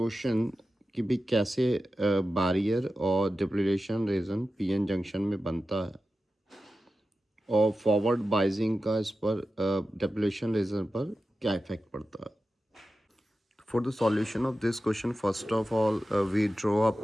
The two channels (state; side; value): normal; both; correlation 0.92